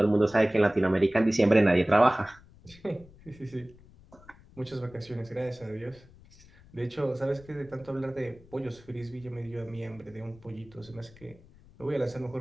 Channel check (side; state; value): left; noise; rumble, 24 dB below the sound